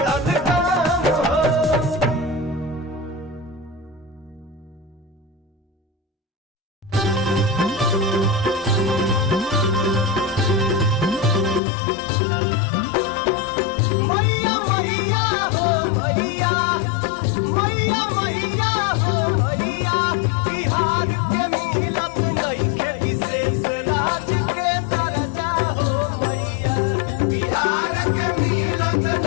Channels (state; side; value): drops out; right; at 11.6 s